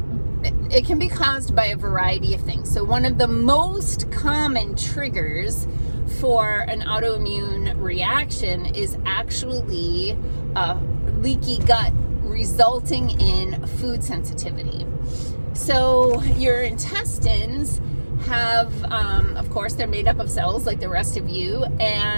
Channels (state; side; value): inverted; both; correlation -1.00